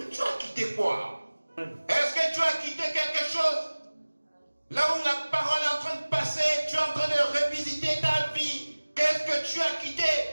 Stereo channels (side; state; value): both; inverted; correlation -1.00